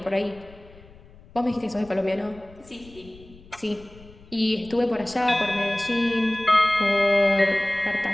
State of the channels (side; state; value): left; noise; rumble, 23 dB below the sound